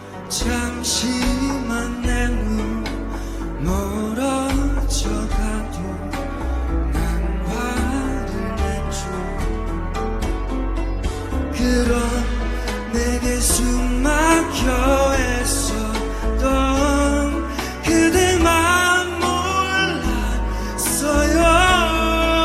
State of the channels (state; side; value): identical; both; correlation 1.00